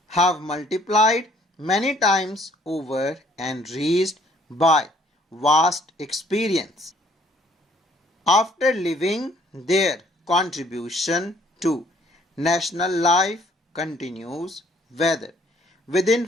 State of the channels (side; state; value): both; normal; correlation 0.62